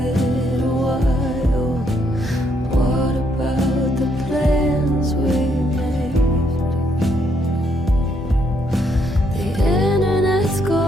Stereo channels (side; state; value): both; normal; correlation 0.73